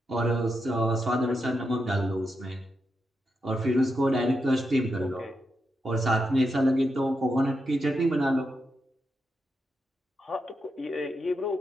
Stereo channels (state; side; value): normal; both; correlation 0.85